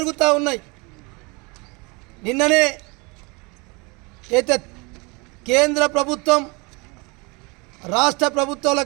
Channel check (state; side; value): quieter; left; 28.1 dB